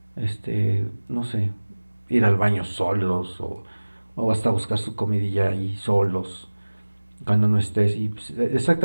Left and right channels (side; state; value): both; inverted; correlation -1.00